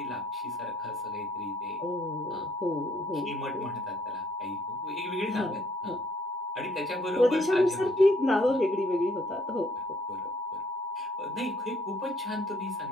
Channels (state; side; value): normal; both; correlation 0.65